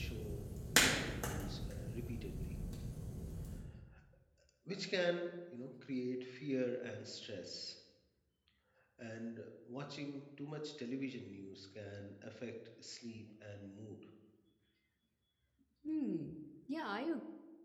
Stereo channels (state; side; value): identical; both; correlation 1.00